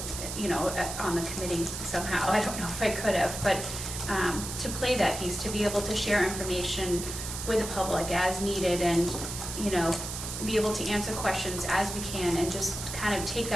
on the committee somehow. I don't know if I could have, but to play that piece, to be able to share information with the public as needed, and, be able to answer questions as we can, and just kind of take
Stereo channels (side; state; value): right; noise; hiss, 7 dB below the sound